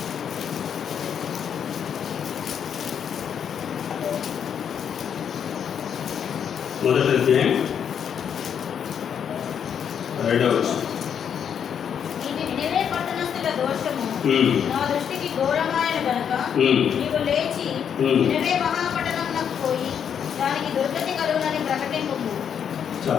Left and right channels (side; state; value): right; quieter; 8.1 dB